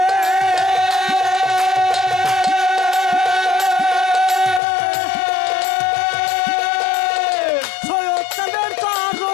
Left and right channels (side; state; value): right; drops out; at 4.6 s